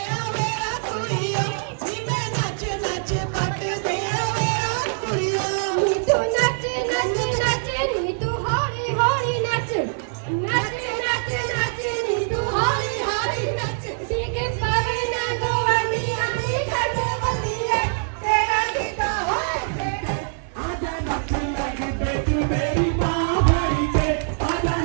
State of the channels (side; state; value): left; silent; digital silence